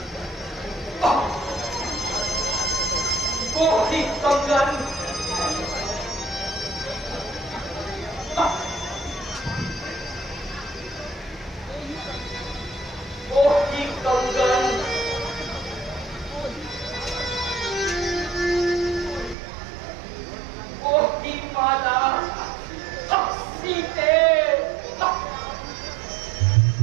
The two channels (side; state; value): left; drops out; at 19.4 s